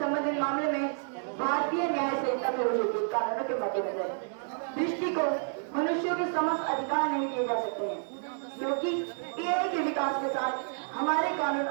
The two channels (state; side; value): silent; left; digital silence